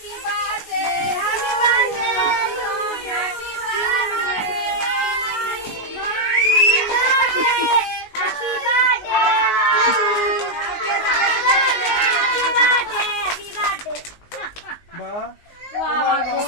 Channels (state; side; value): late; right; 19 ms